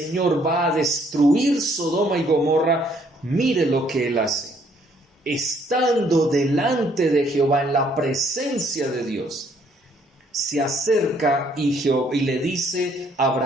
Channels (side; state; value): both; normal; correlation 0.65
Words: va a destruir Sodoma y Gomorra, mire lo que él hace. Estando delante de Jehová, en la presencia de Dios, se acerca y le dice